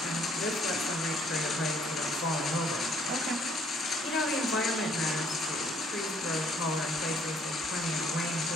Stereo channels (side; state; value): both; normal; correlation 0.63